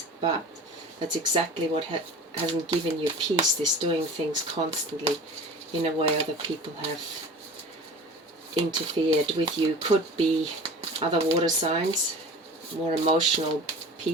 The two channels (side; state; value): both; normal; correlation 0.38